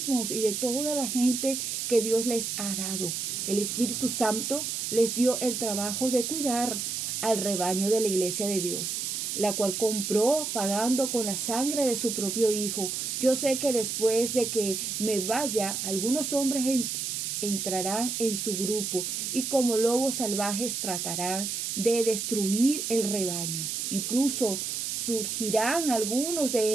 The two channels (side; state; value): right; noise; hiss, 2 dB below the sound